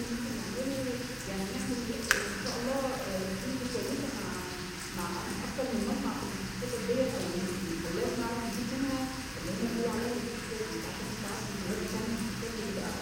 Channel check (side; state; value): both; identical; correlation 1.00